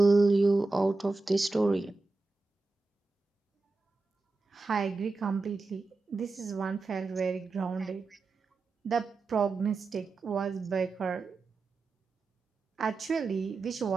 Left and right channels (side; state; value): left; quieter; 3.7 dB